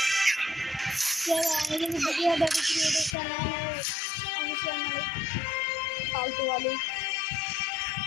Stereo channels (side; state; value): right; drops out; at 3.2 s